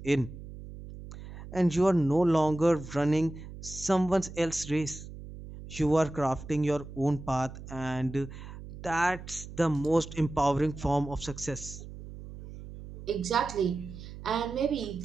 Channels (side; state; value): right; noise; hum, 13 dB below the sound